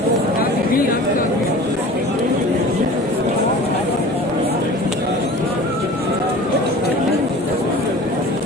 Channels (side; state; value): both; normal; correlation 0.41